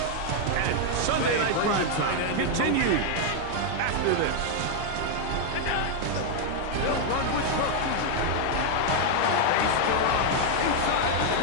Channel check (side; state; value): both; different; correlation 0.00